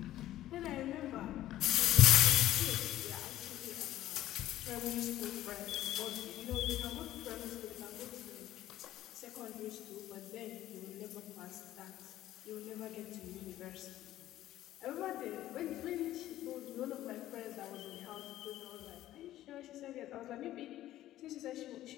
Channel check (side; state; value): right; quieter; 14.0 dB